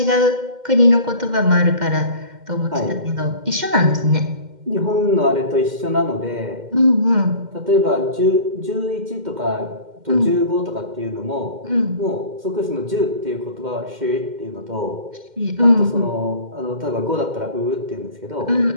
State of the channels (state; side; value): late; left; 2.1 ms